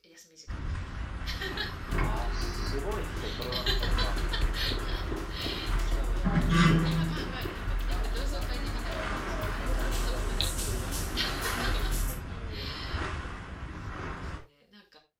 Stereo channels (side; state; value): both; identical; correlation 1.00